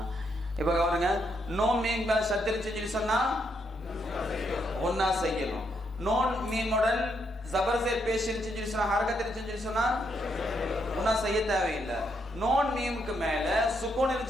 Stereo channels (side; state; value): both; normal; correlation 0.77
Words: இப்ப பாருங்க நோன் மீம் மேல சத்து இருந்துச்சு சொல்லி சொன்னா ஒன்னா செய்யணும். நோன் மீமுடன் ஜபர் ஜேர் பேஷ் இருந்துச்சு சொல்லி சொன்னா ஹரக்கத் இருந்துச்சு சொல்லி சொன்னா ஒன்னா செய்ய தேவையில்லை. நோன் மீமுக்கு மேல சுகூன்